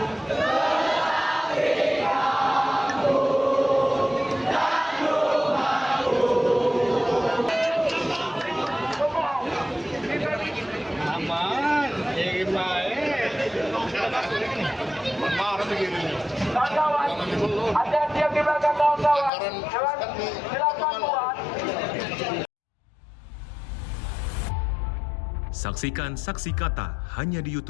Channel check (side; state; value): right; drops out; at 19.3 s